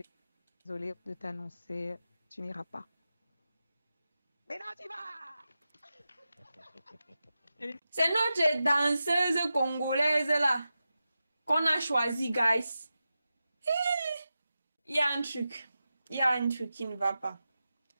désolée de t'annoncer, tu n'iras pas. Mais non, tu vas! C'est notre danseuse congolaise là qu'on a choisi, guys. Il y a un truc. Il y a un truc qui ne va pas.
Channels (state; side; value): inverted; both; correlation -0.92